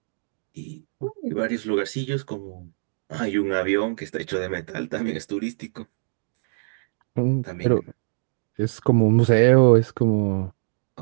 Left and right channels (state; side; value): silent; left; digital silence